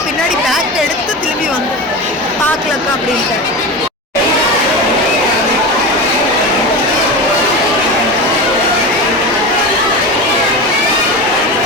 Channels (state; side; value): normal; both; correlation 0.25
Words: பின்னாடி பேக் எடுத்து திரும்பி வந்து பார்க்கலக்கா அப்படின்ட்டு.